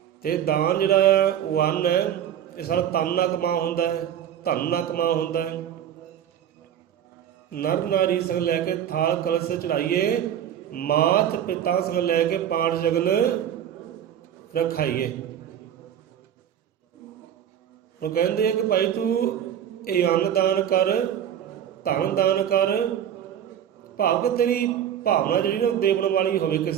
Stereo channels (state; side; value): quieter; left; 9.9 dB